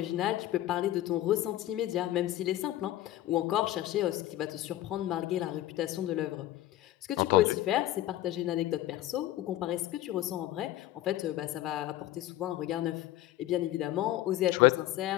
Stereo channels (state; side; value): quieter; right; 14.5 dB